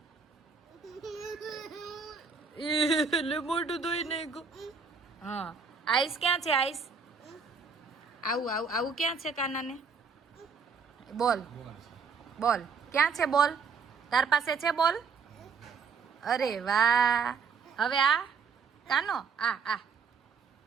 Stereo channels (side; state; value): left; quieter; 5.3 dB